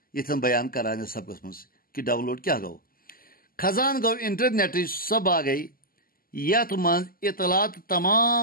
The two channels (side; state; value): right; late; 0.42 ms